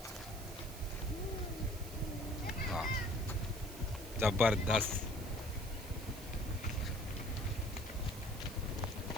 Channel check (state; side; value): noise; right; hiss, 14 dB below the sound